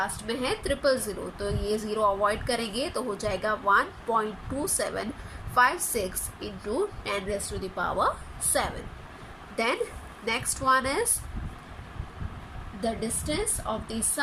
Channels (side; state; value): both; identical; correlation 1.00